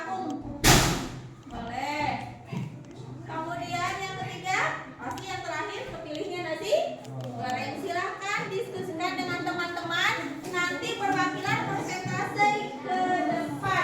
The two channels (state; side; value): identical; both; correlation 1.00